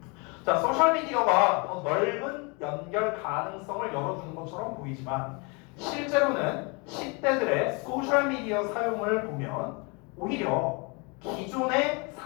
자, 소셜미디어가 더 넓은 연결 가능성을 열어주는 것처럼 보이지만 실제로는 10대들의 소셜미디어 사용을 보면 오히려 기존의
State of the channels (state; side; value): quieter; right; 30.7 dB